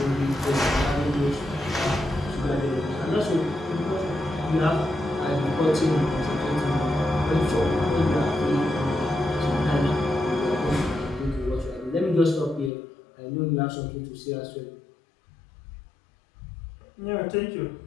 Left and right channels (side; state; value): right; drops out; at 12.7 s